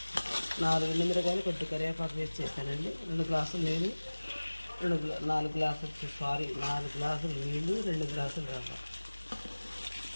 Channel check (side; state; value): both; inverted; correlation -1.00